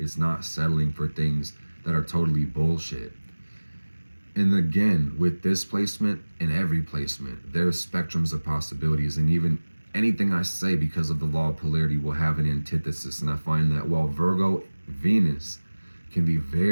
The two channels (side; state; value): both; inverted; correlation -1.00